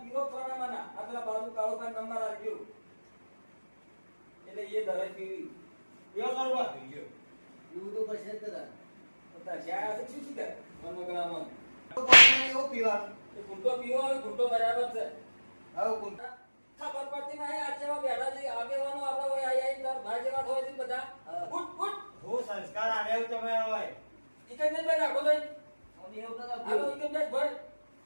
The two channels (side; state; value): both; inverted; correlation -1.00